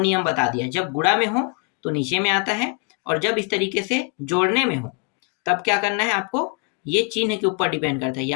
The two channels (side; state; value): right; quieter; 32.3 dB